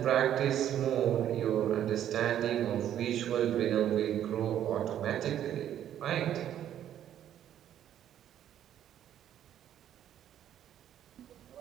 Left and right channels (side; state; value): left; quieter; 10.8 dB